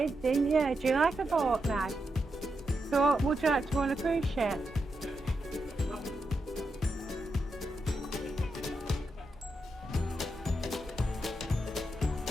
Didn't you? Do you like a boat now? So would you like to go on a cruise ship?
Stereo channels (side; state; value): both; normal; correlation 0.85